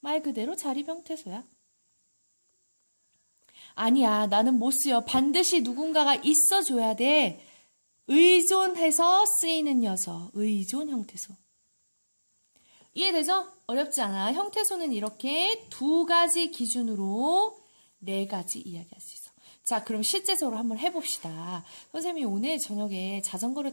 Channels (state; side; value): inverted; both; correlation -1.00